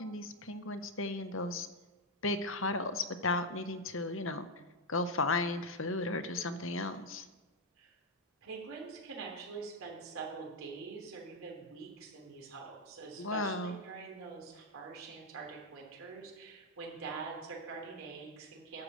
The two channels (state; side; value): normal; both; correlation 0.03